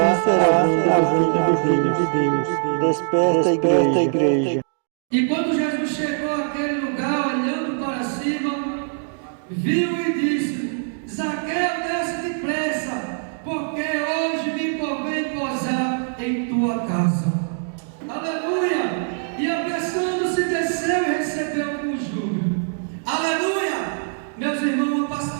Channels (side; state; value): left; silent; 64 dB below the other